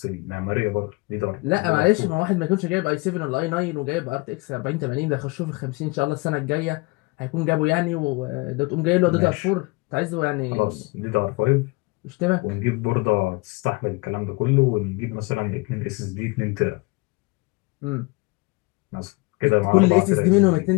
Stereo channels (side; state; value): right; quieter; 25.4 dB